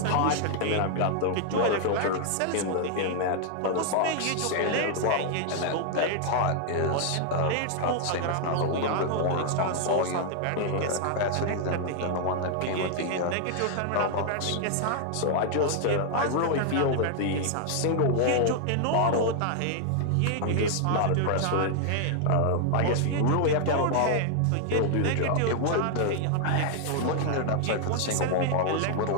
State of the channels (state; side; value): different; both; correlation 0.00